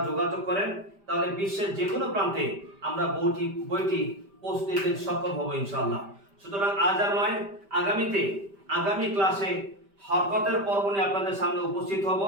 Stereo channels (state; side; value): late; left; 5.1 ms